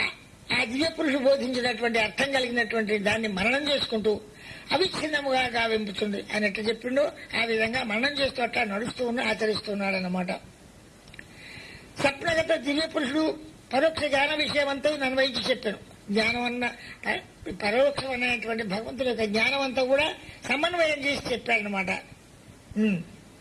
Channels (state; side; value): identical; both; correlation 1.00